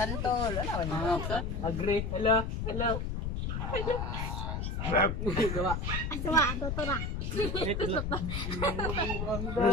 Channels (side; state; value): left; noise; rumble, 2 dB below the sound